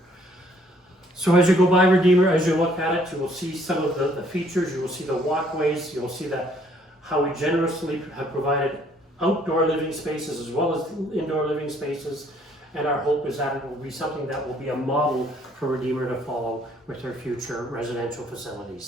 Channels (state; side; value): normal; both; correlation 0.64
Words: So as you go by Redeemer, as you look at it, you will see some of the features, you will see the walkways, you will see that how we generously have provided outdoor living spaces as well as indoor living spaces. and our hope is that it will be something that will be a model for Redeemer to follow with their future residential